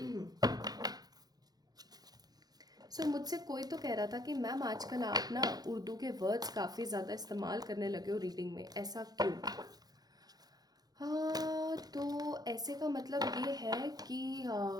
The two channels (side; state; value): left; late; 0.19 ms